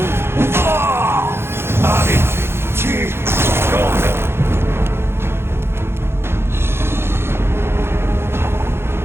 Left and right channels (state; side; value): late; left; 0.12 ms